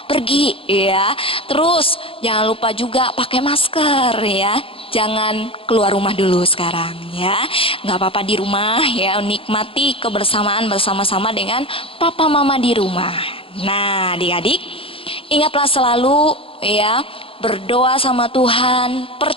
pergi, ya. Terus jangan lupa juga pakai masker, ya. Jangan keluar rumah dulu sekarang, ya. Nggak apa-apa di rumah, ya. Nikmati kebersamaan bersama-sama dengan papa mama di rumah. Nah, adik-adik, ingatlah selalu, ya, berdoa sama Tuhan,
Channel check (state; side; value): late; right; 0.27 ms